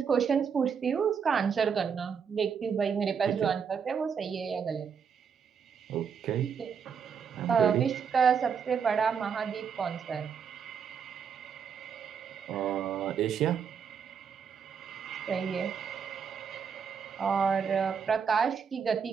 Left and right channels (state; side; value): quieter; left; 6.8 dB